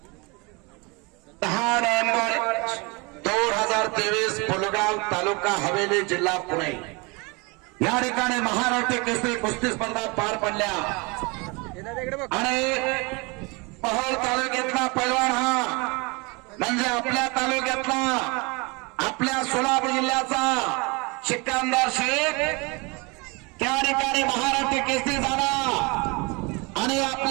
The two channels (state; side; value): quieter; left; 28.1 dB